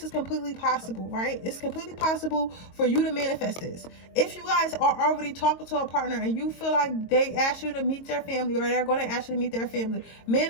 is completely possible, right? It's completely possible for you to manifest this. If you guys are already talking to a partner and you feel like they ask you to meet their family, or they're going to ask you to meet their family,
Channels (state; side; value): late; right; 22 ms